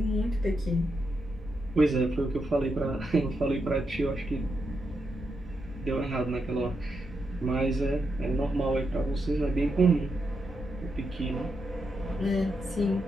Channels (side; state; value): both; normal; correlation 0.84